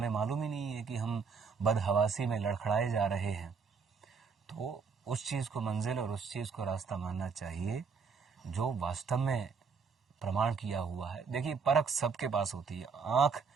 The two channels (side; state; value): left; quieter; 5.5 dB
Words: मालूम ही नहीं है कि हम बदहवासी में लड़खड़ाए जा रहे हैं। तो उस चीज़ को मंजिल और उस चीज़ को रास्ता मानना चाहिए जो वास्तव में प्रमाण किया हुआ है। देखिए, परख सबके पास होती है, आँख